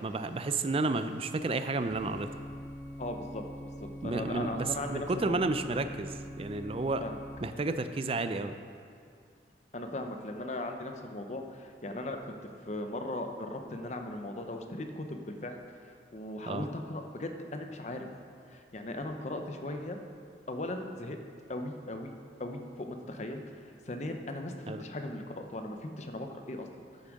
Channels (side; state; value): both; normal; correlation 0.46